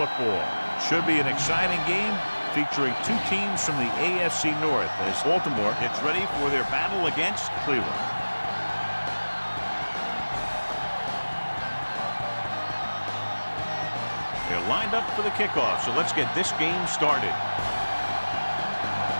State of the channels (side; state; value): both; inverted; correlation -1.00